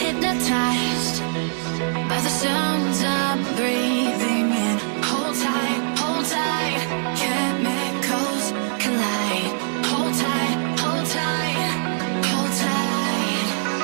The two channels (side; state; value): left; silent; digital silence